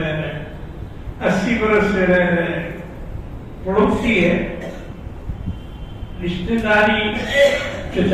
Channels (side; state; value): both; identical; correlation 1.00